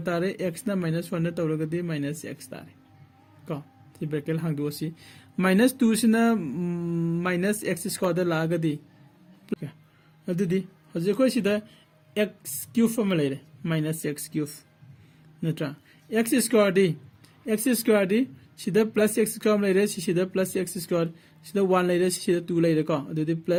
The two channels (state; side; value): identical; both; correlation 1.00